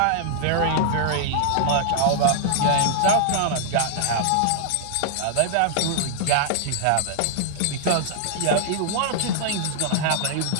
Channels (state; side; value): different; both; correlation -0.01